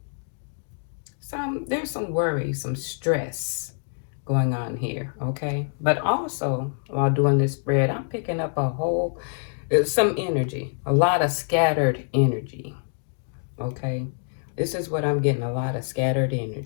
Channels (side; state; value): right; silent; digital silence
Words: there's some worry, some stress going on here, okay? But also, while doing this spread, I'm picking up some energy, a lot of scattered energy, okay? This is what I'm getting, a lot of scattered